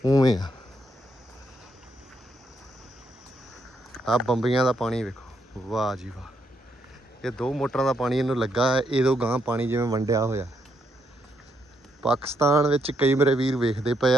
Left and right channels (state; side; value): normal; both; correlation 0.77